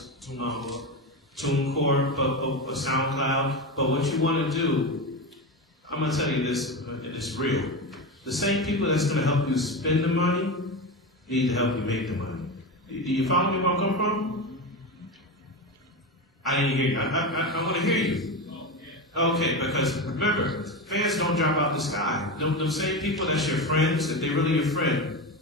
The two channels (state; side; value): normal; both; correlation 0.20